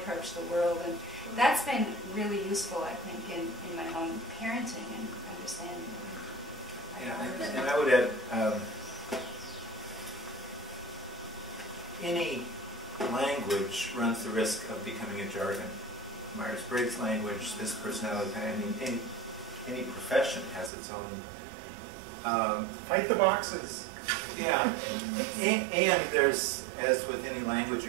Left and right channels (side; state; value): left; drops out; at 20.7 s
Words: the world. And that's been really useful, I think, in my own parenting and understanding. Yeah, and I would add, any language runs the risk of becoming a jargon. Myers-Briggs language, this personality, I mean, any profession has its own... Fight the boxes. Yeah, and there's, as with any language